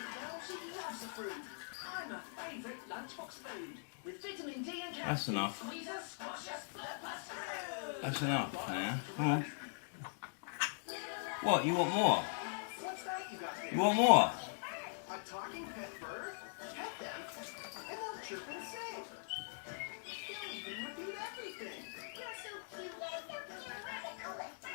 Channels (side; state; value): right; silent; digital silence